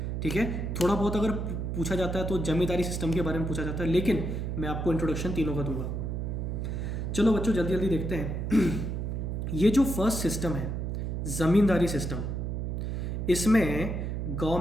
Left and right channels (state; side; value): noise; right; hum, 2 dB below the sound